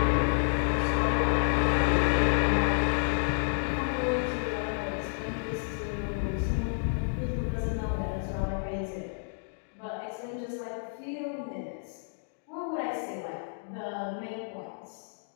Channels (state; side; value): silent; right; digital silence